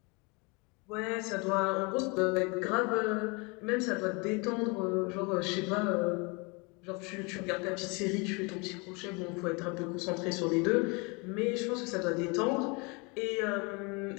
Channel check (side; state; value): right; quieter; 29.6 dB